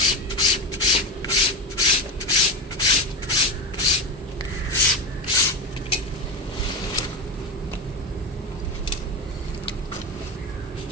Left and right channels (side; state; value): both; normal; correlation 0.19